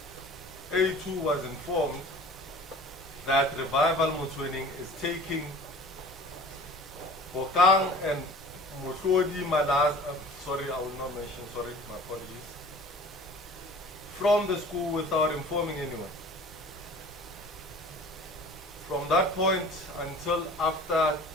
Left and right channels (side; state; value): both; normal; correlation 0.44